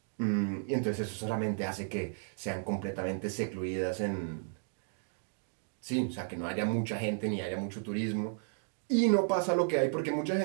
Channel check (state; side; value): silent; left; digital silence